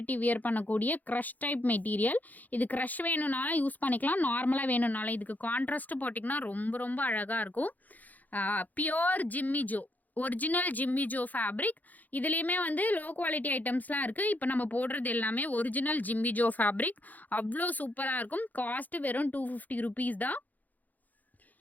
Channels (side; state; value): right; late; 0.081 ms